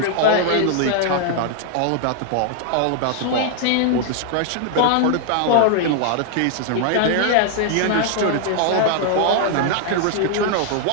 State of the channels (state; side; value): different; both; correlation 0.00